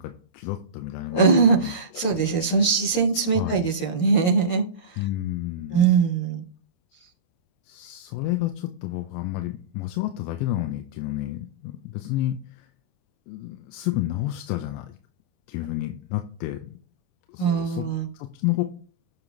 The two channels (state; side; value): late; right; 22 ms